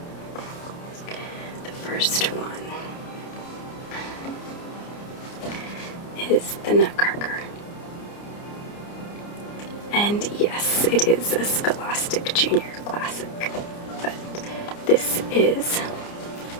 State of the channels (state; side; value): late; right; 29 ms